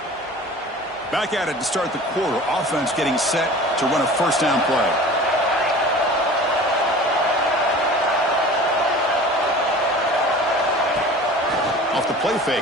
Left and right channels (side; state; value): both; normal; correlation 0.41